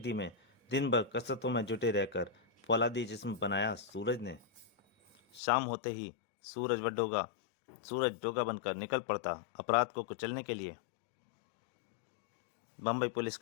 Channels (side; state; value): right; drops out; at 5.4 s